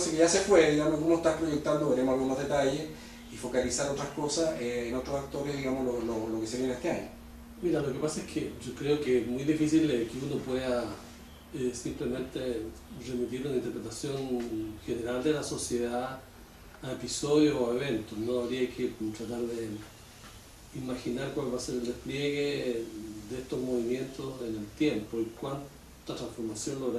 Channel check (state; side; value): identical; both; correlation 1.00